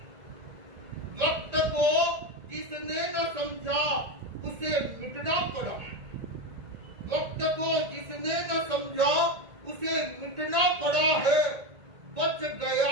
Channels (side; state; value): left; late; 1.8 ms